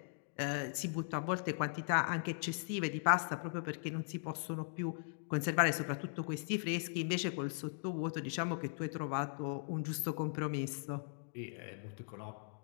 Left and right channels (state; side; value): silent; right; digital silence